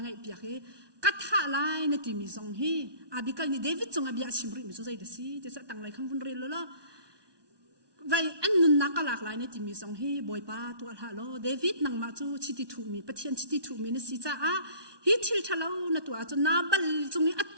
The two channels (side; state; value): left; late; 1.2 ms